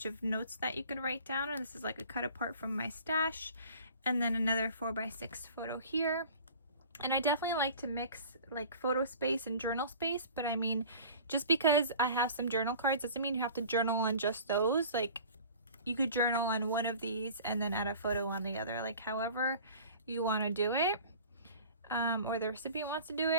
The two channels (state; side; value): inverted; both; correlation -0.44